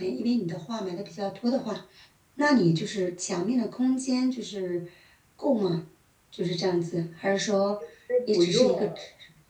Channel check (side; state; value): both; identical; correlation 1.00